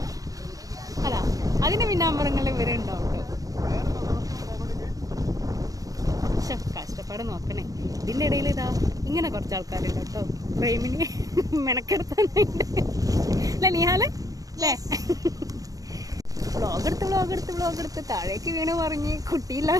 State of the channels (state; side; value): late; left; 0.17 ms